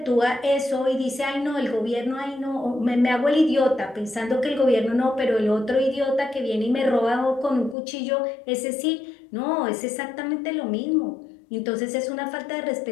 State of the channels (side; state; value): right; drops out; at 7.8 s